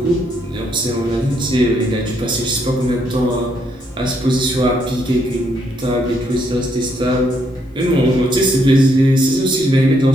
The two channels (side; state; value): both; normal; correlation 0.74